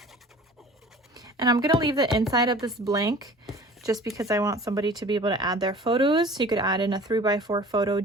And I'm gonna leave the inside of this blank just because I want somebody to be able to add their photos. You could add in a 3x4 photo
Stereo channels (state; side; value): normal; both; correlation 0.44